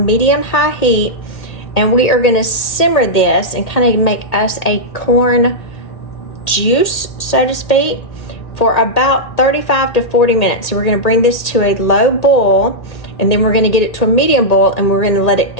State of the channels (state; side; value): late; right; 1.8 ms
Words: medium-high heat, and we are going to simmer this and kind of make us a corn juice, so to speak, for about 35 to 40 minutes. So we're going to bring this to a low boil, and then we're going to get it to a medium boil, and we're going to let it